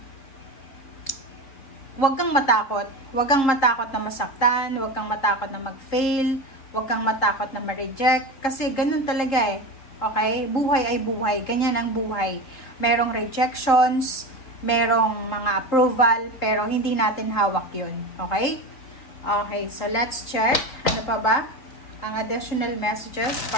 huwag kang matakot. Huwag kang matakot na masaktan, huwag kang matakot na mag-fail, huwag kang matakot na ma-reject. Kasi ganun talaga eh. Okay? Buhay ay buhay. Ganyan ang buhay. Merong rejections, merong mga approval, pero hindi natin hawak yun. Okay? Okay, so let's check. Ano pa ba? Ang additional messages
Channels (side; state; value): right; late; 3.7 ms